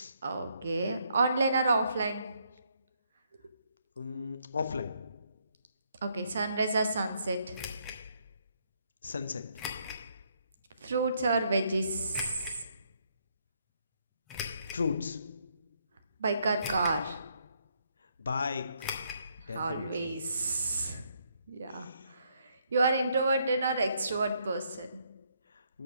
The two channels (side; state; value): both; inverted; correlation -0.72